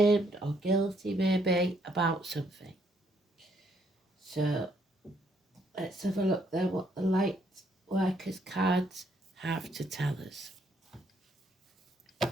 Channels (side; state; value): both; normal; correlation 0.70